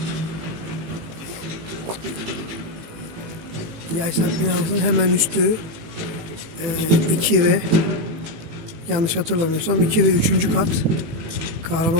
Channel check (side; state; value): left; late; 18 ms